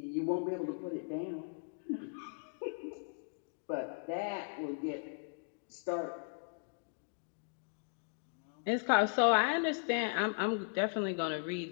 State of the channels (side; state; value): right; silent; digital silence